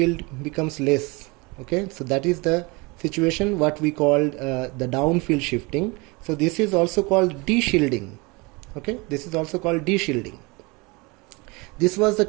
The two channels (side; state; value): left; quieter; 26.5 dB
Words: becomes less. Okay. So that is the situation what we called the downfield shifting. So this is also called deshielding. Okay, this is also called deshielding. This was the